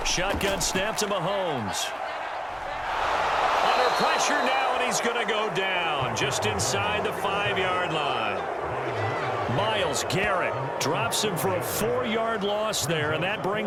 Shotgun snap to Mahomes. Under pressure now, and he's going to go down just inside the 5-yard line. Myles Garrett drops him for a 4-yard loss there, and that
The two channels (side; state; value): both; identical; correlation 1.00